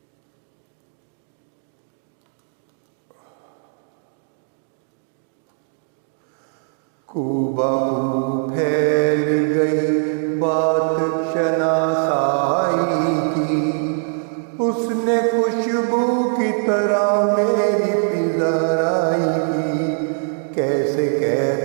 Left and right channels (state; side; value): silent; left; 62 dB below the other